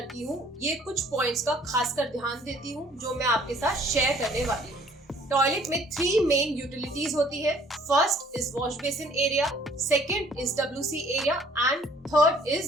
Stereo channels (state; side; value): normal; both; correlation 0.58